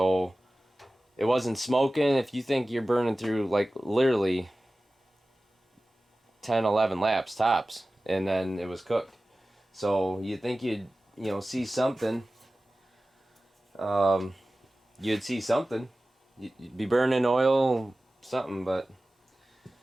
it wasn't smoking. If you think you're burning through, like, literally 10, 11 laps tops, and then it was cooked. So you think you'd see something. You'd see something. You'd be burning oil, something, but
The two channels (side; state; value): both; normal; correlation 0.96